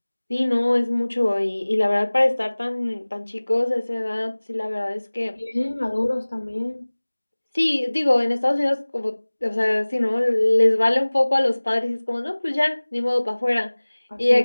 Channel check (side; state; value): both; inverted; correlation -1.00